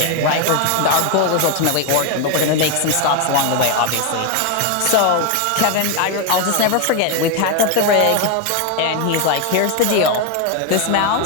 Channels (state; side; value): different; both; correlation 0.01